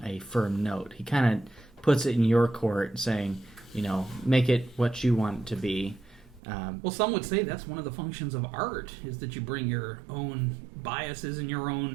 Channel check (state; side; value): drops out; left; at 6.4 s